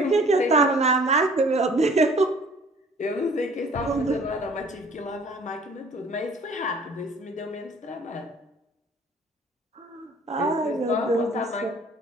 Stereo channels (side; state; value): both; normal; correlation 0.53